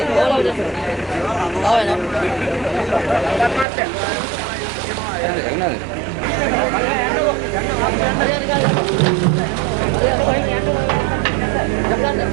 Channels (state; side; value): drops out; left; at 3.7 s